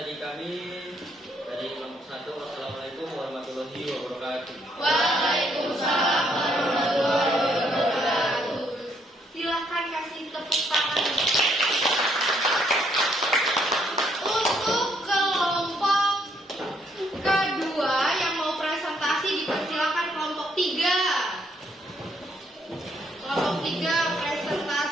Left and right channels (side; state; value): both; normal; correlation 0.71